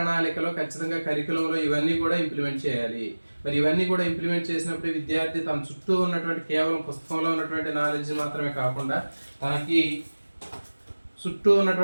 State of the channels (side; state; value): both; inverted; correlation -1.00